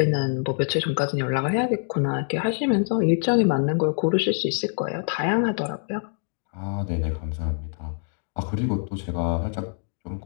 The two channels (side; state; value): right; silent; 57 dB below the other